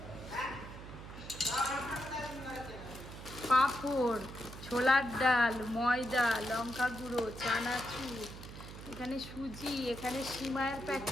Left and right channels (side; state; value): right; noise; hum, 12 dB below the sound